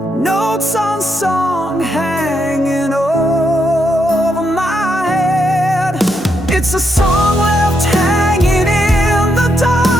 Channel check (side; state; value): both; normal; correlation 0.80